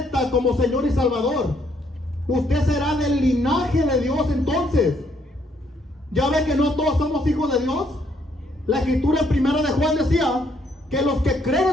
como Señor y Salvador, usted será del linaje de Dios. Entonces, ya ve que no todos somos hijos de Dios. La escritura en 1 de Juan decía que los que creen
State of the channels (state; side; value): normal; both; correlation 0.70